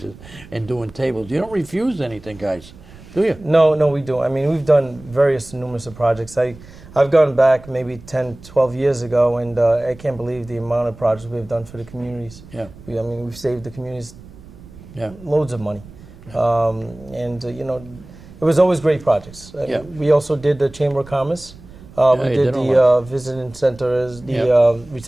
and doing tables. You don't refuse anything, guys, do you? No, we do. I mean, we've done numerous of projects. I've gone back maybe 10, 12 years ago, and I can't believe the amount of projects we've done for the communities. Yeah. I mean, we've saved the communities loads of money. Yeah. And, you know, it was always great projects. We also did the Chamber of Commerce. We did the visiting center, the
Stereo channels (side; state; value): right; noise; rumble, 20 dB below the sound